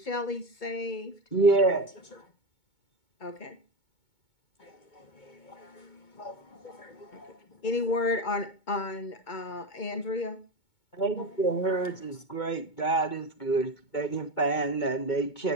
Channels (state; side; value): late; right; 2.2 ms